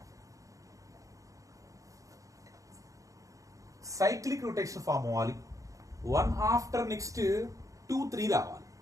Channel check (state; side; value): late; left; 0.16 ms